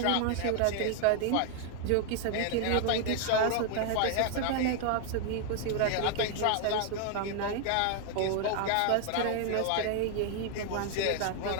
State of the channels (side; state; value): both; different; correlation 0.00